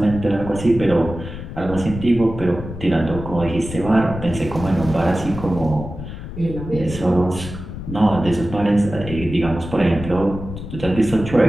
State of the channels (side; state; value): left; noise; rumble, 10 dB below the sound